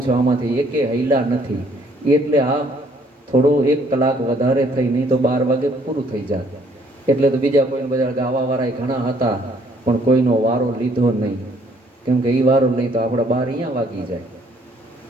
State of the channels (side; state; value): both; normal; correlation 0.64